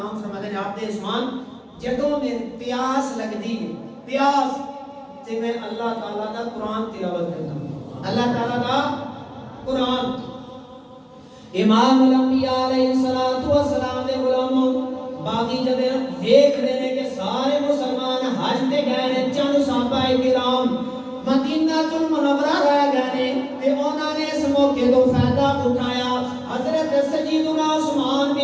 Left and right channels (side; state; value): both; identical; correlation 1.00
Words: فرماتے ہیں آپ دے عثمان جدوں میں پیاس لگدی پیاس تے میں اللہ تعالی دا قرآن تلاوت کرتا ہوں اللہ تعالی دا قرآن امام الانبیاء علیہ الصلوۃ والسلام دے غلام باقی جدے دیکھ رہے ہیں کہ سارے مسلمان حج تے گئے ہیں چند صحابہ کرام مدینہ المنورہ رہ گئے تے انہوں نے اس موقع تو فائدہ اٹھایا حضرت سیدنا عثمان